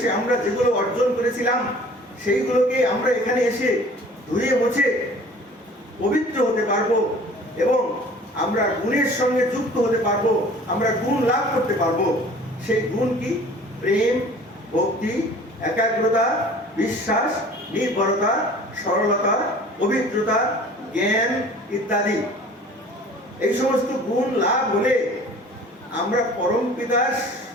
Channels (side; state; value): both; normal; correlation 0.47